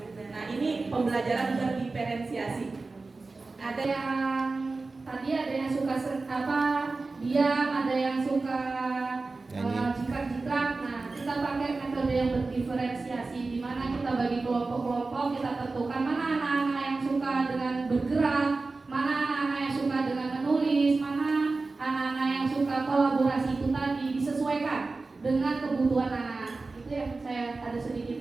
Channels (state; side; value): quieter; left; 3.7 dB